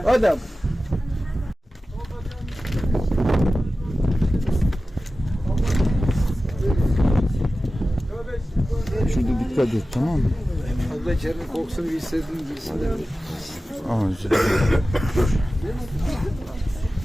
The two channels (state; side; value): normal; both; correlation 0.95